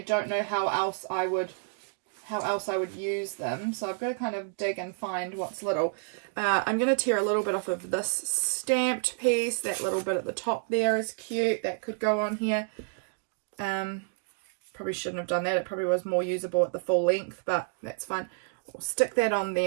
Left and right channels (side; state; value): left; silent; digital silence